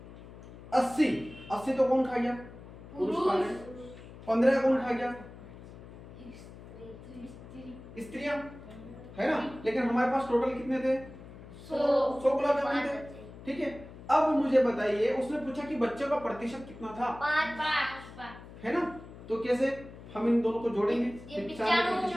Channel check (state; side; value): noise; left; hum, 16 dB below the sound